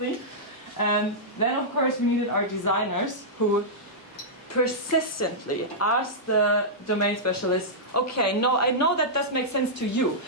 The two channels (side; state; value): both; normal; correlation -0.12